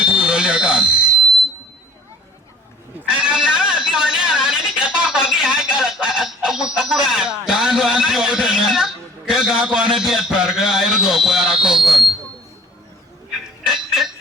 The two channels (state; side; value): normal; both; correlation 0.51